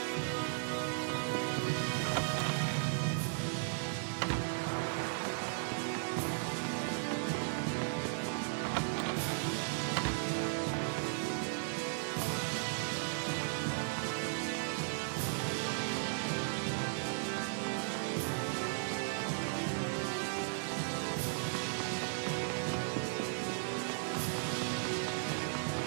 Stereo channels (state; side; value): silent; left; digital silence